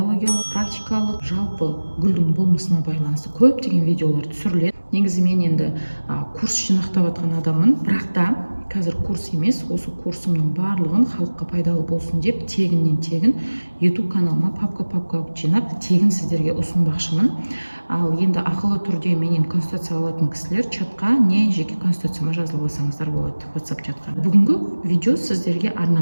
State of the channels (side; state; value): both; inverted; correlation -1.00